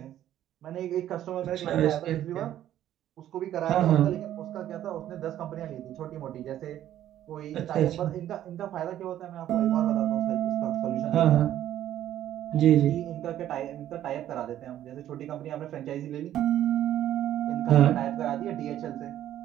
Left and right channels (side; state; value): left; quieter; 12.0 dB